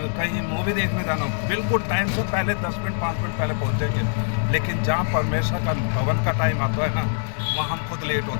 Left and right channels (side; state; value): right; silent; digital silence